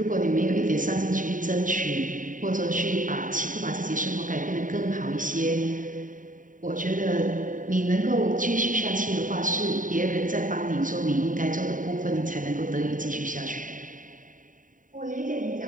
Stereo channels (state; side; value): late; left; 0.38 ms